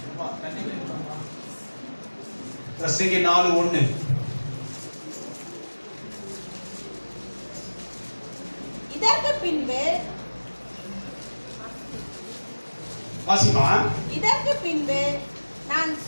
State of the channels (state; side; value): inverted; both; correlation -1.00